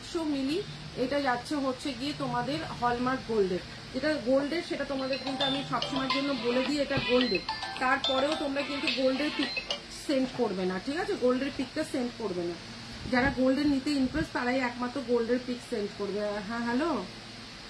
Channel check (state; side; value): identical; both; correlation 1.00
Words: মিলি এটা যাচ্ছে হচ্ছে গিয়ে তোমাদের হলমার্ক গোল্ডের। যেটা গোল্ডের সেটা তোমাদের কিন্তু আমি সবসময়ের জন্য বলে দিই এটা গোল্ডের, তারপরেও তোমরা কিন্তু গোল্ডের পিক সেন্ড করবে না, ঠিক আছে। গোল্ডের পিকটা সেন্ড করবে না। যারা গোল্ডের নিতে ইন্টারেস্ট তারাই একমাত্র গোল্ডের পিক সেন্ড করবে। হ্যাঁ হ্যালো,